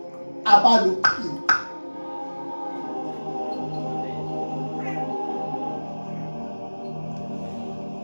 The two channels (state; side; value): inverted; both; correlation -1.00